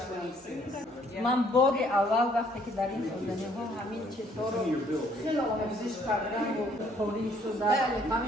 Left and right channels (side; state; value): both; normal; correlation 0.63